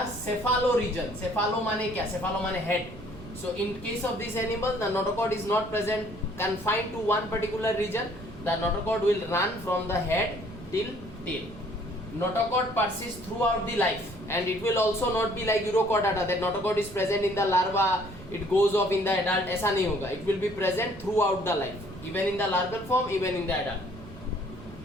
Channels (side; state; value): right; noise; rumble, 16 dB below the sound